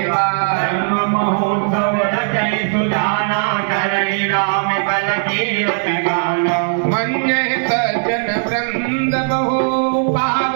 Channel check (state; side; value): silent; left; digital silence